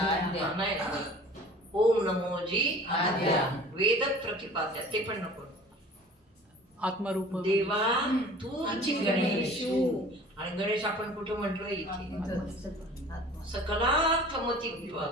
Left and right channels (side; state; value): both; normal; correlation 0.45